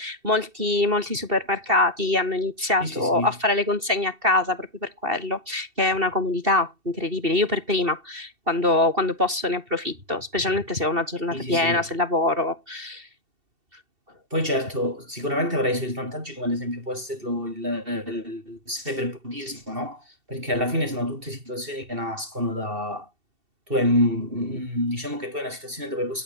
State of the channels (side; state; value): left; late; 2.7 ms